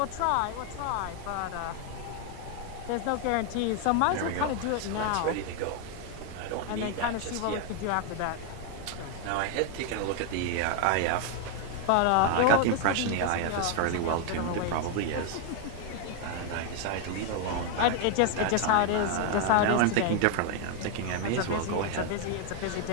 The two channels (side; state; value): both; different; correlation 0.01